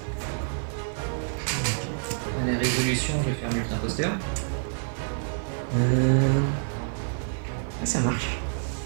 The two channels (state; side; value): silent; left; digital silence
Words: À la résolution, je vais faire multi imposteur. Ah, ça marche.